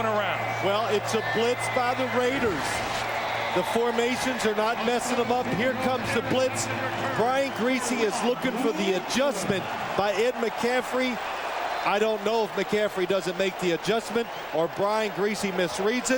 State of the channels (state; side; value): identical; both; correlation 1.00